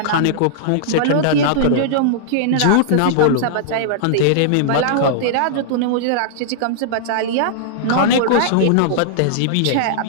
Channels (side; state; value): both; different; correlation -0.02